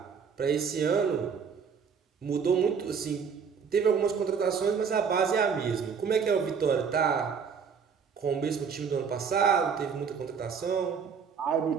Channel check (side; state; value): left; quieter; 6.3 dB